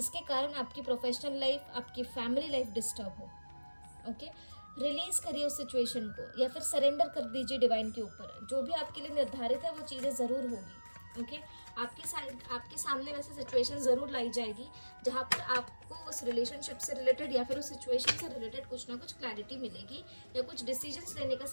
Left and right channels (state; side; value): inverted; both; correlation -1.00